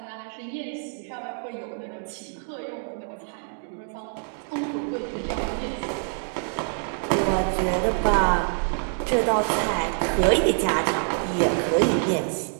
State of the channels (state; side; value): silent; left; 61 dB below the other